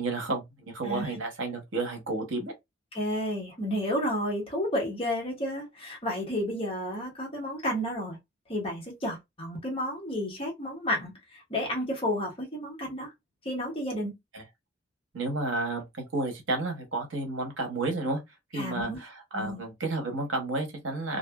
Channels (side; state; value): both; normal; correlation 0.24